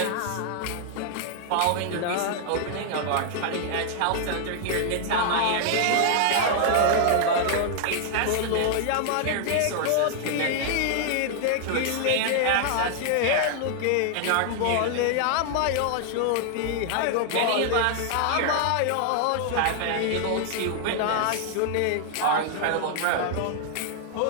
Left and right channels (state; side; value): different; both; correlation -0.01